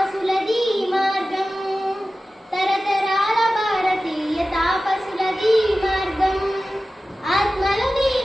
మార్గం తరతరాల భారతీయ తాపసులది మార్గం ఆత్మలో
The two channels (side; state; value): both; normal; correlation 0.95